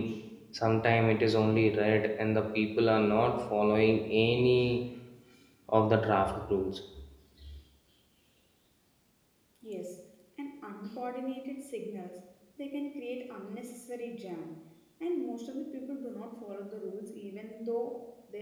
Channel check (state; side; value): identical; both; correlation 1.00